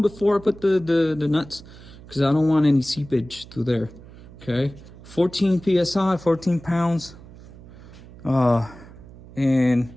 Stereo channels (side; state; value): right; noise; hum, 19 dB below the sound